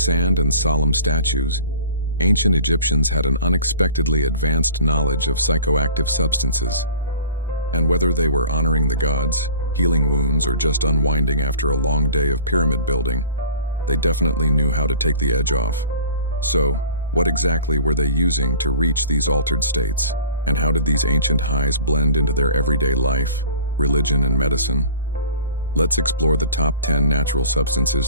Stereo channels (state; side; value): inverted; both; correlation -0.44